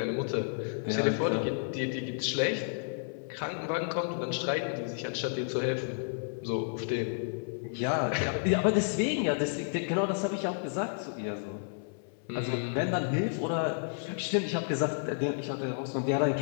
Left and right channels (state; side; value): silent; right; 57 dB below the other